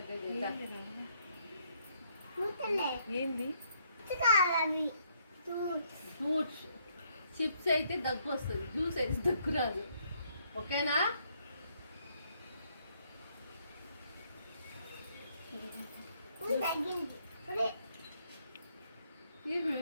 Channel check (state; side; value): inverted; both; correlation -0.71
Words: ఏంది ఫ్రూట్స్ చిప్స్ అయితే దగ్గు వస్తుంది, జ్యూస్ అయితే దగ్గు రాదు. ఓకేనా?